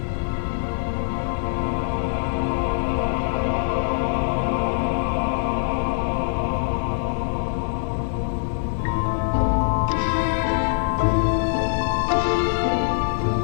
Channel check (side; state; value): right; silent; digital silence